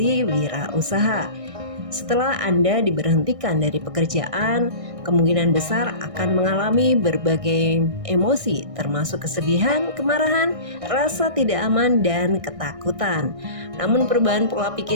wirausaha. Setelah Anda diberhentikan dari pekerjaan, kemungkinan besar akan mengalami berbagai emosi, termasuk kesedihan, kemarahan, rasa tidak aman, dan ketakutan. Namun perubahan pola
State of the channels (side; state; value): left; late; 1.6 ms